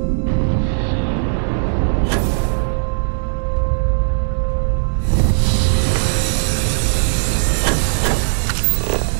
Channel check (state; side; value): silent; left; digital silence